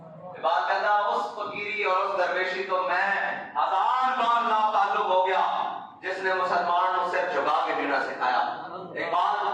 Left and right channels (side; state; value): both; identical; correlation 1.00